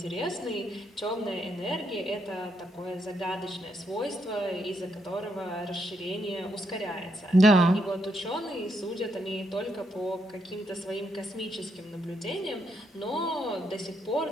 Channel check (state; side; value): normal; both; correlation 0.78